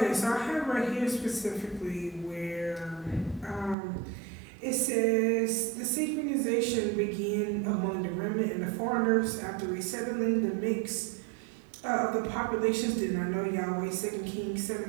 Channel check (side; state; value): left; drops out; at 3.8 s